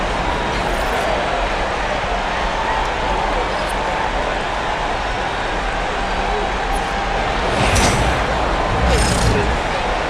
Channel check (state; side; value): identical; both; correlation 1.00